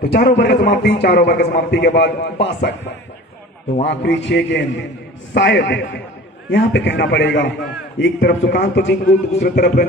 तो 4 ओवर की समाप्ति। 4 ओवर की समाप्ति के बाद 62। तो आखिरी 6 गेंद, शायद यहाँ पे कहना पड़ेगा, एक तरफ सुकांत जिंकू, दूसरी तरफ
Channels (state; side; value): normal; both; correlation 0.41